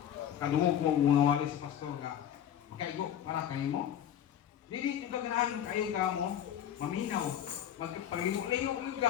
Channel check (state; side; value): quieter; right; 10.0 dB